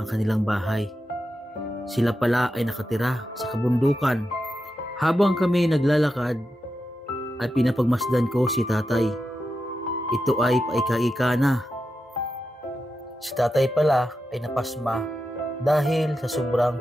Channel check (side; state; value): both; normal; correlation 0.89